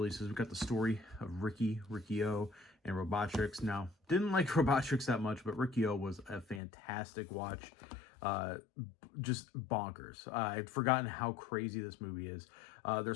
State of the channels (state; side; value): drops out; right; at 6.6 s